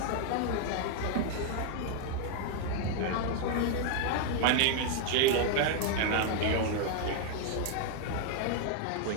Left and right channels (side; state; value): both; different; correlation 0.00